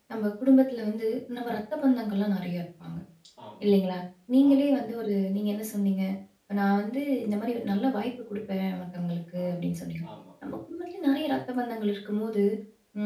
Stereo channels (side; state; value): both; identical; correlation 1.00